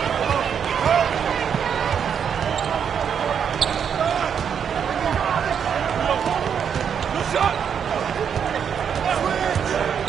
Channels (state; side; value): quieter; left; 7.6 dB